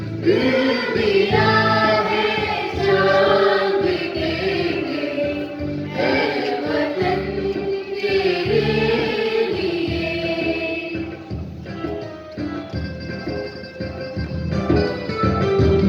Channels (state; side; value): identical; both; correlation 1.00